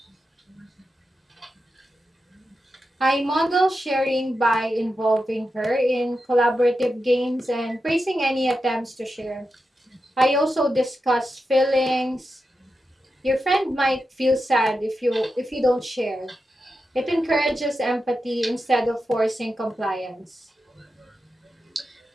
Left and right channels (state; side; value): normal; both; correlation 0.89